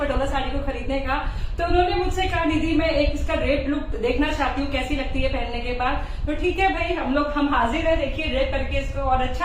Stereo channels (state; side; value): identical; both; correlation 1.00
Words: साड़ी को खरीदने का, तो उन्होंने मुझसे कहा निधि मैं एक इसका रेड लुक देखना चाहती हूँ, कैसी लगती है पहनने के बाद। तो ठीक है भाई, हम हाजिर है। देखिए रेड करके इसको, और